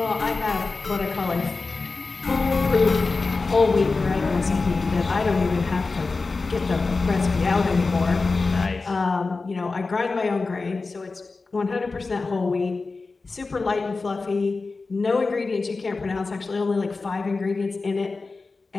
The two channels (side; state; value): right; quieter; 3.9 dB